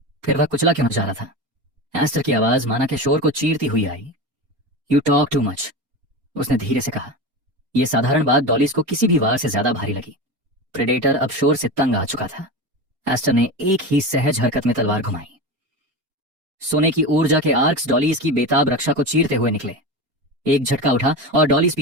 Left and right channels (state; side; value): late; left; 4.3 ms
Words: फिर वह कुचला क्यों जा रहा था? एस्टर की आवाज माना के शोर को चीरती हुई आई। यू टॉक टू मच, उसने धीरे से कहा। यह साधारण बात डॉलीज को किसी भी वार से ज्यादा भारी लगी। प्रेडेटर अब शोर से तंग आ चुका था। एस्टर ने एक ही सहज हरकत में तलवार घुमाई। सोने की ऊर्जा के आर्क्स डॉलीज की बेताब रक्षा को चीरते हुए निकले। एक झटका उठा और डॉलीज